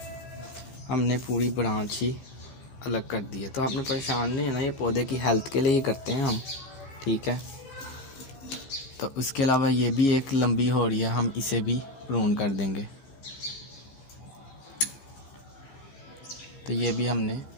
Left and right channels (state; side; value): late; right; 16 ms